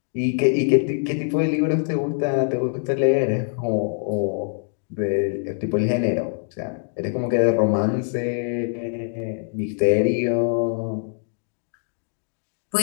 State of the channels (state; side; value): silent; right; digital silence